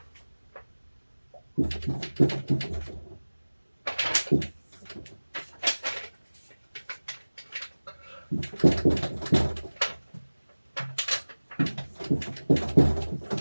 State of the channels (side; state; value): both; inverted; correlation -1.00